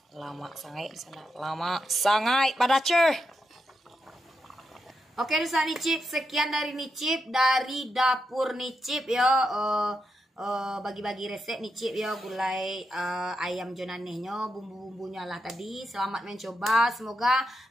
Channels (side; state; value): both; normal; correlation 0.85